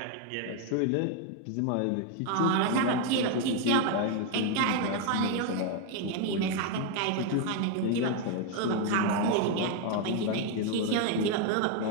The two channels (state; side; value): different; both; correlation 0.01